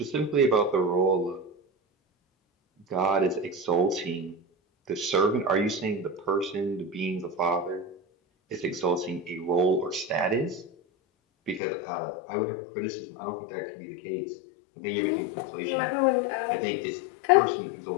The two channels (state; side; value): drops out; right; at 11.6 s